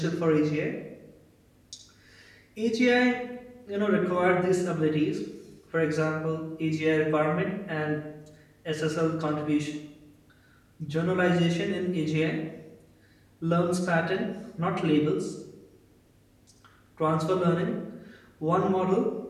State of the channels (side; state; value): both; identical; correlation 1.00